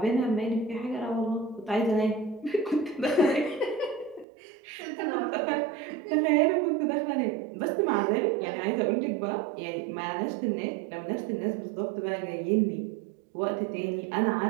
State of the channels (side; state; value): left; drops out; at 4.2 s